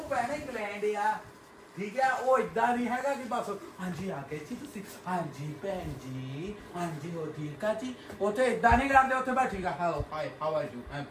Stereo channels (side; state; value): both; identical; correlation 1.00